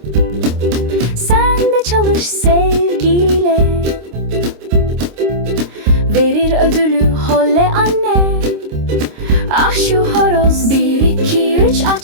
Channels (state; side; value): late; left; 26 ms